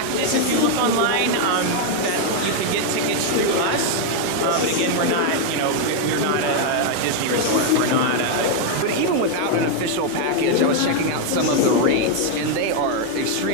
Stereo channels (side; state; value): both; different; correlation 0.00